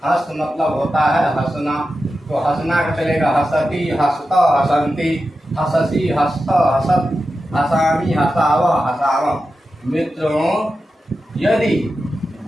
हंस मतलब होता है हंसना। तो हंसना का चलेगा हसती हसत हसंती हससी हसत हसत हसामी हसाव हसाव। मित्रों यदि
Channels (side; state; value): both; normal; correlation 0.91